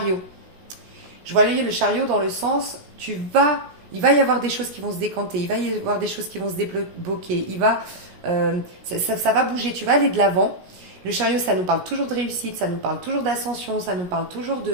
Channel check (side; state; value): left; late; 16 ms